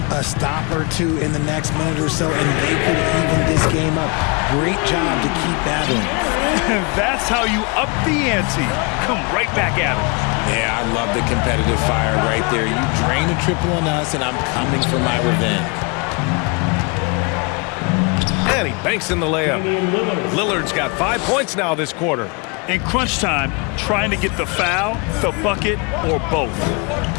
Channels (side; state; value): right; quieter; 31.5 dB